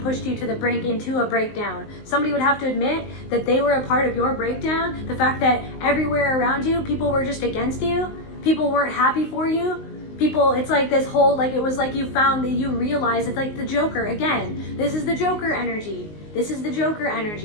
you to the brink into a breakdown. Somebody would have to admit that they were a part of your breakdown. The fact that everywhere around you, people were just against you. People weren't happy for you. People, it's like this whole, like it was like you found that you realized it's like the Joker. Again, this is the Joker energy. This is the Joker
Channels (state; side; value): late; right; 19 ms